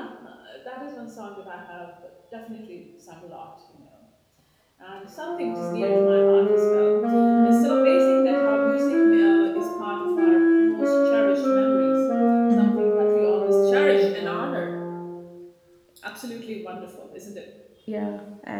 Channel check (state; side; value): identical; both; correlation 1.00